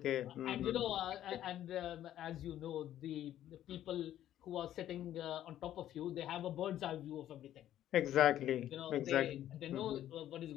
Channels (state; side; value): quieter; right; 12.1 dB